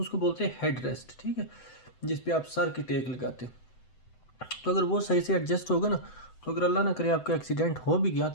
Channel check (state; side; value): late; right; 7.9 ms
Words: बोलते हैं हेड रेस्ट। ठीक है, जिस पे आप सर की टेक लगाते, तो अगर वो सही से एडजस्ट होगा ना, तो अगर अल्लाह ना करे आपका एक्सीडेंट हो भी गया